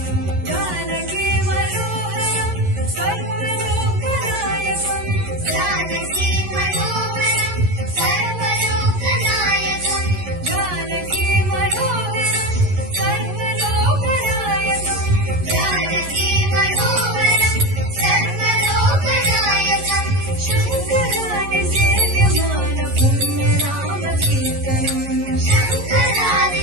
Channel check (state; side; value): late; left; 11 ms